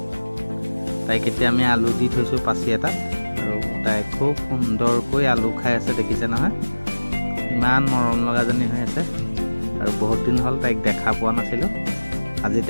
তাইক এতিয়া আমি আলু দি থৈছোঁ পাচি এটাত, আৰু তাই খুব সুন্দৰকৈ আলু খাই আছে, দেখিছে নহয়? ইমান মৰম লগাজনী হৈ আছে, আৰু বহুত দিন হ'ল তাইক দেখা পোৱা নাছিলোঁ। আজি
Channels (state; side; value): inverted; both; correlation -1.00